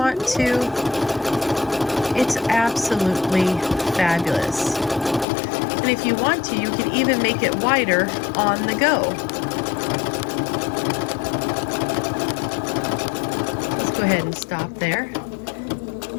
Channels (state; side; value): drops out; right; at 5.2 s